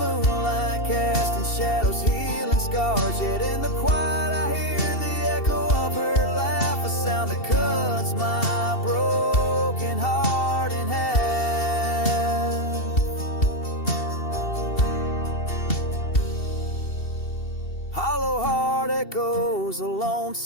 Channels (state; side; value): late; right; 2.7 ms